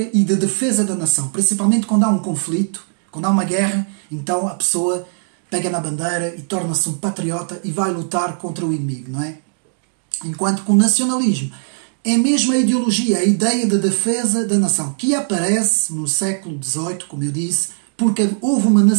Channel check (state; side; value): silent; left; digital silence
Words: e de defesa da nação, principalmente quando há um conflito, quando há uma guerra, então a pessoa pega na bandeira e torna-se um patriota e vai lutar contra o inimigo, não é? Enquanto que o nacionalismo é mesmo a ideologia, a ideia de defesa da nação, que aparece no século XVIII, como eu disse, porque houve uma